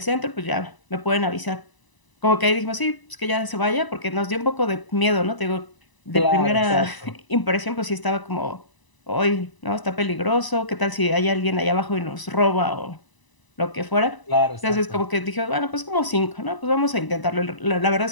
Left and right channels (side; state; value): right; late; 1.0 ms